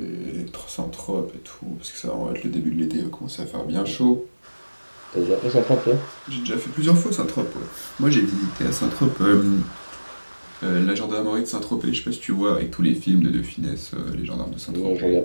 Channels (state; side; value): inverted; both; correlation -1.00